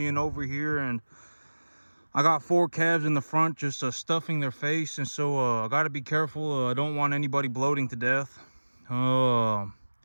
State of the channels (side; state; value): both; inverted; correlation -1.00